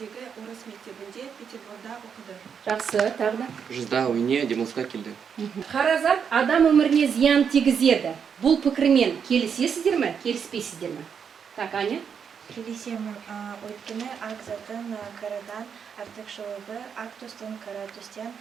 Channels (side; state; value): left; quieter; 7.0 dB